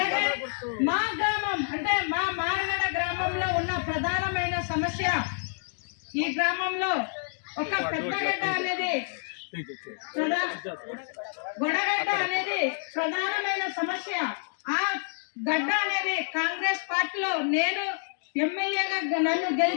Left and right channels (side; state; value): right; silent; digital silence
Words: మా గ్రామం అంటే మా మారగడ గ్రామంలో ఉన్న ప్రధానమైన సమస్య, ఈ గ్రామంలో ఒక పెద్దగడ్డ అనేది గొడగడ్డ అనేది ప్రధానమైన సమస్య. ఆ గడ్డ అనేది కాంగ్రెస్ పార్టీలో నేను ఎమ్మెల్యేగా నన్ను